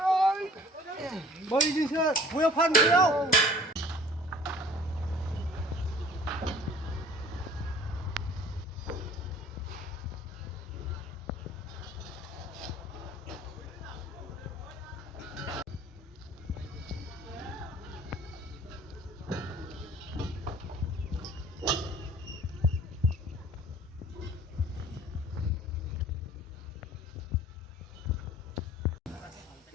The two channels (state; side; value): normal; both; correlation 0.50